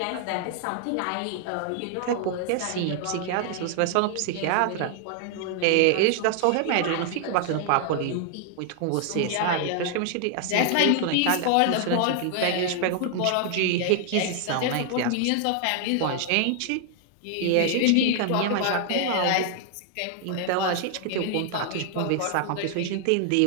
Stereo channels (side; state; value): both; different; correlation 0.00